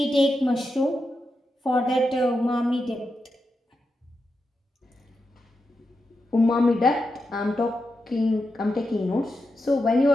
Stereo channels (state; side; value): normal; both; correlation 0.87